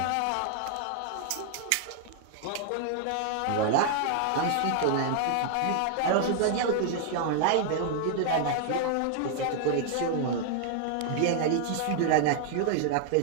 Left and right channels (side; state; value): both; different; correlation 0.00